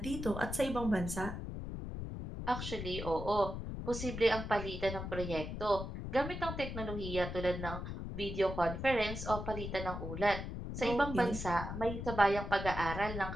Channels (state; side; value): noise; left; rumble, 6 dB below the sound